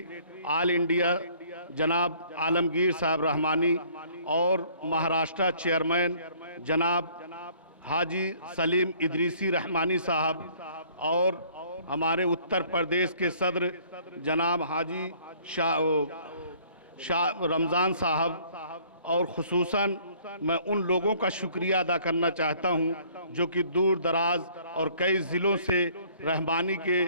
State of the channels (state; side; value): inverted; both; correlation -0.57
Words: ऑल इंडिया जनाब आलमगीर साहब रहमानी और महाराष्ट्र चेयरमैन जनाब हाजी सलीम इदरीसी रहमानी साहब और हमारे उत्तर प्रदेश के सदर जनाब हाजी शाह रमज़ान साहब और खुसूसन मैं उन लोगों का शुक्रिया अदा करना चाहता हूं जो कि दूर दराज और कई ज़िलों से रहमानी के